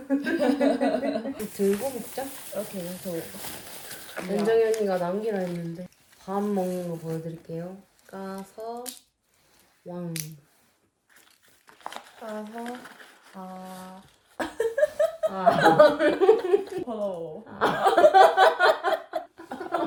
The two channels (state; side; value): identical; both; correlation 1.00